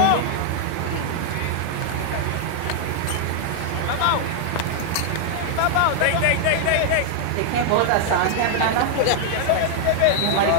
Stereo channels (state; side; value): different; both; correlation 0.00